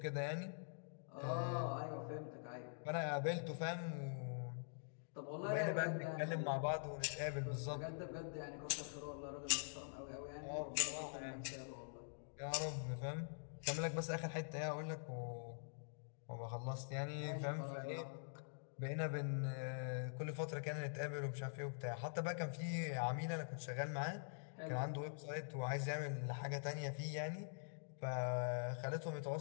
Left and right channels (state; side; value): silent; right; digital silence